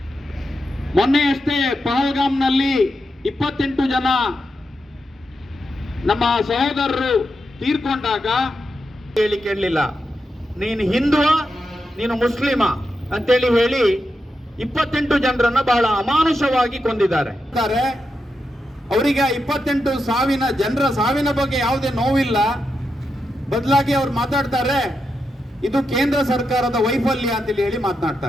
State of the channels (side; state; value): both; normal; correlation 0.86